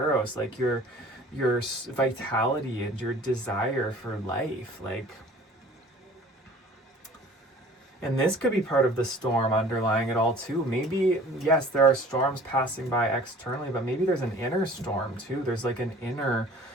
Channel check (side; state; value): both; normal; correlation 0.48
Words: like your vitality and your desire for life. Like, and this could be part of the storm underlying it all too. Maybe, yes, there are storms passing by externally, but maybe there's an inner storm too. There's like an inner